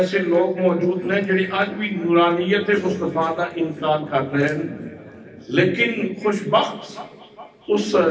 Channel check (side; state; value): both; identical; correlation 1.00